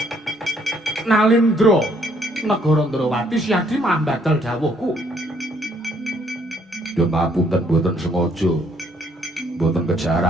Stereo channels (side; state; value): both; normal; correlation 0.67